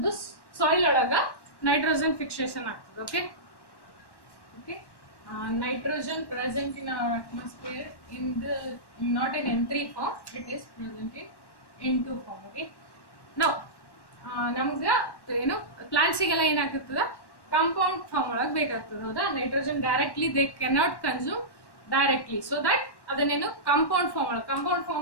ಸಾಯಿಲ್ ಒಳಗ ನೈಟ್ರೋಜನ್ ಫಿಕ್ಸೇಷನ್ ಆಗ್ತದೆ. Okay, nitrogen present in our atmosphere in not in N3 form, it is present in N2 form. Okay, now ನಮ್ಗೆ ಏನು ಪ್ಲಾಂಟ್ಸಿಗೆಲ್ಲ ಏನಾಗ್ತದ ಕಾಂಪೌಂಡ್ ಫಾರ್ಮ್ ಒಳಗೆ ಬೇಕಾಗ್ತದೆ. ಹೌದಾ? Nitrogen directly they cannot consume directly, so that ಅದನ್ನೇನು compound form ಒಳಗೆ, compound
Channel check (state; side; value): late; right; 1.1 ms